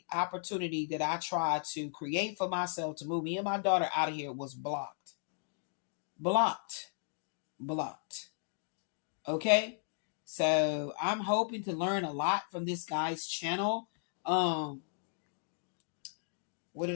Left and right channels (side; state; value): right; silent; digital silence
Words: opportunity that I tried to create for myself to move me and my daughter out of here was blocked. Blocked. Blocked. Okay? So I'm hoping to learn a lot from this guy's channel. Um what